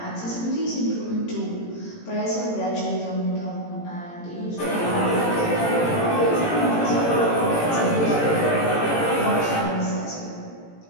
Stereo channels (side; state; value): right; late; 18 ms